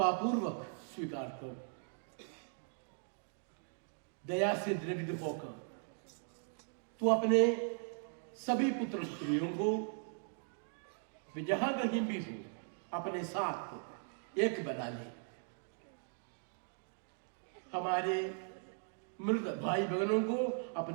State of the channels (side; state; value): left; silent; 52 dB below the other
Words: स्वीकार करो। दया से दृढ़ होकर तू अपने सभी पुत्र पुत्रियों को वे जहां कहीं भी हो अपने साथ एक बना ले। हमारे मृत भाई बहनों को